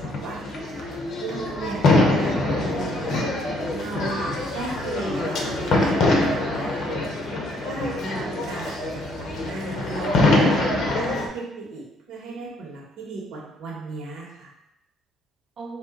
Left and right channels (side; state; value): both; normal; correlation 0.67